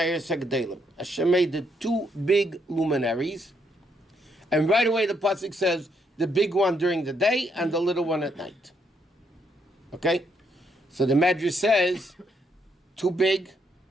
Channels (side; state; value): both; normal; correlation 0.75